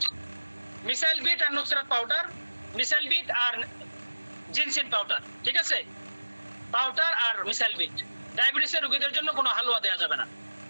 বিট আর নুসরাত পাউডার, মিসাইল বিট আর জিনসিন পাউডার, ঠিক আছে, পাউডার আর মিসাইল বিট। ডায়াবেটিসের রোগীদের জন্য কোনো হালুয়া দেওয়া যাবে না।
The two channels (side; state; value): both; inverted; correlation -1.00